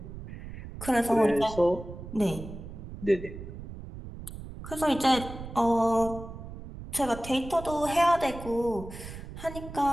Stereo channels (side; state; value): right; noise; rumble, 11 dB below the sound